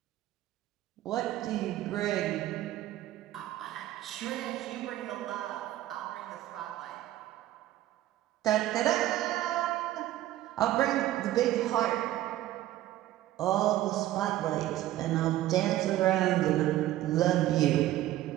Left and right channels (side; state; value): left; quieter; 14.4 dB